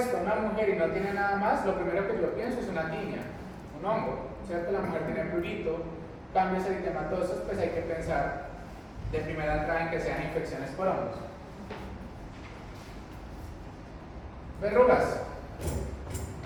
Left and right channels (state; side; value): identical; both; correlation 1.00